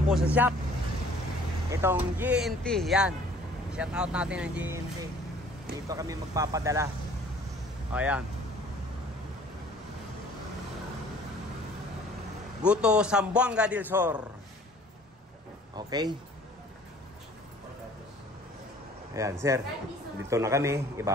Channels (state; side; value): normal; both; correlation 0.53